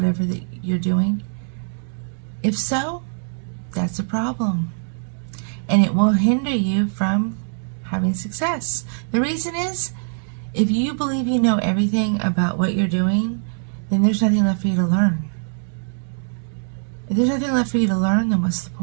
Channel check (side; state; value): left; silent; digital silence